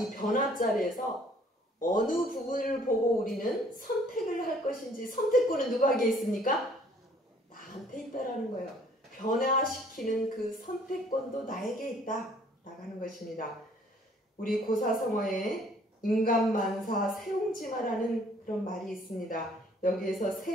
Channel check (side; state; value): both; normal; correlation 0.59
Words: 변화 자리에서 어느 부분을 보고 우리는 선택을 할 것인지, 선택권은 누구에게 있습니까? 나한테 있다라는 거예요. 변화시키는 그 선택권도 나에게 있다 나가는 것입니다. 우리 고사성어에 인간만사 세옹지마라는 그런 말이 있습니다. 여기에서